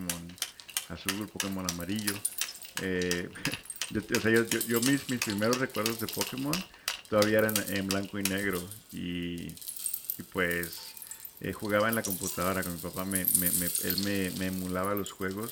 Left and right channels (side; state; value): both; identical; correlation 1.00